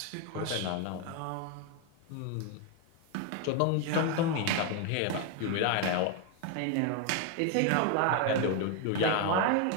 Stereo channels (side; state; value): both; different; correlation 0.01